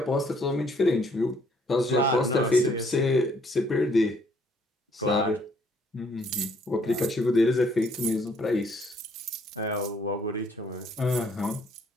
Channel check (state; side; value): normal; both; correlation 0.65